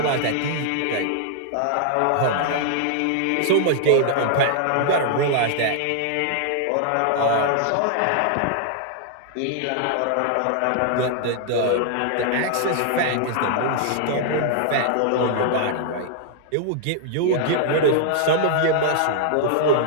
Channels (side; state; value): both; different; correlation -0.01